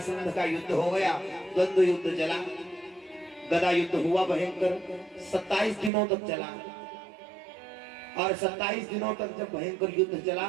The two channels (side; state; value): left; drops out; at 5.9 s